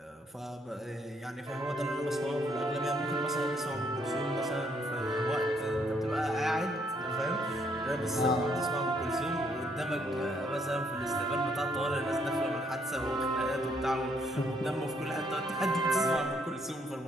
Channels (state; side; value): normal; both; correlation 0.70